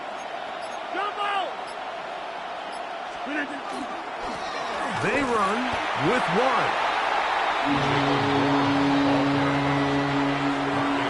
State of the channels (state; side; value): identical; both; correlation 1.00